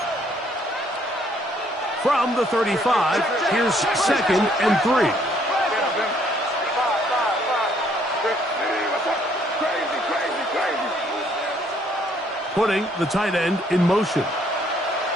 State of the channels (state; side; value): normal; both; correlation 0.66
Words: From the 35, here's 2nd and 3. Putting the tight end in motion.